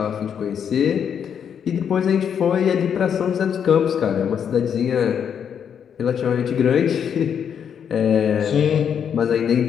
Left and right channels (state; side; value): quieter; right; 8.0 dB